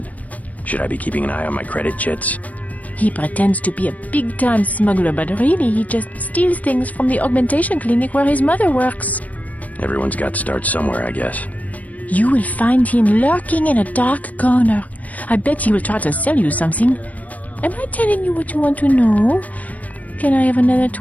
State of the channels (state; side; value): late; right; 0.072 ms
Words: Should I be keeping an eye on my credit chits? He pretends to be a big-time smuggler, but really he just steals things from the augmentation clinic where his mother works. Everyone's got to start somewhere, I guess. You will find him lurking in a dark corner. I bet he will try to sell you something. Am I telling you what you want to know? Can I have another